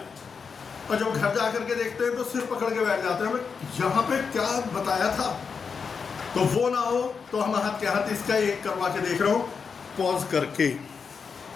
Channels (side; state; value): right; quieter; 5.7 dB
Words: और जब घर जा करके देखते हैं तो सिर पकड़ के बैठ जाते हैं, यहाँ पे क्या बताया था, तो वो ना हो तो हम हाथ के हाथ इसका एक करवा के देख रहा हूँ पॉज करके।